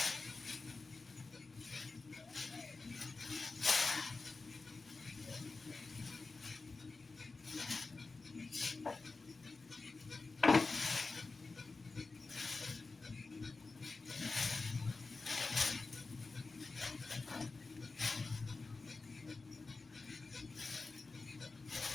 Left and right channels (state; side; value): quieter; right; 3.9 dB